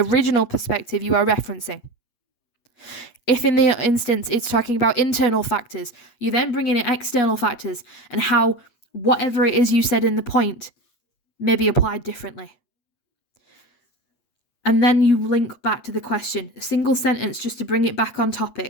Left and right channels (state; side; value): late; right; 8.3 ms